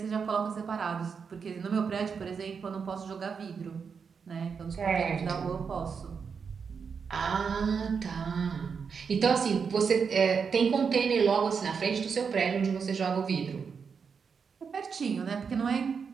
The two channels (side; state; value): left; quieter; 6.0 dB